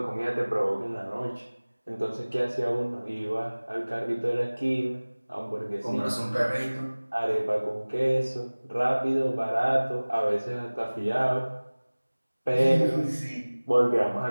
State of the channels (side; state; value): both; inverted; correlation -1.00